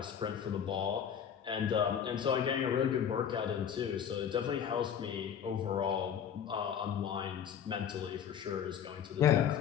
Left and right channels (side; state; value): right; quieter; 8.4 dB